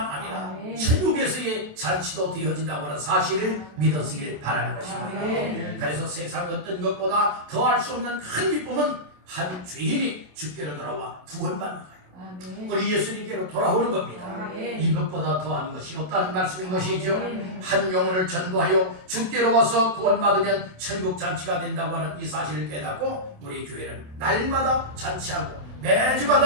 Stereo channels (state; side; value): late; left; 27 ms